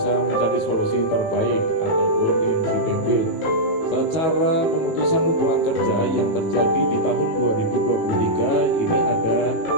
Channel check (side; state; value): right; late; 18 ms